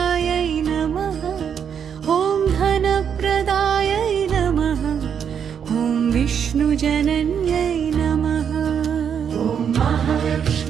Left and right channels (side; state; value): left; quieter; 7.8 dB